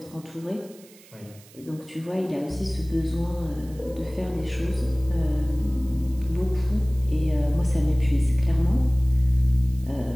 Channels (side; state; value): right; noise; hiss, 24 dB below the sound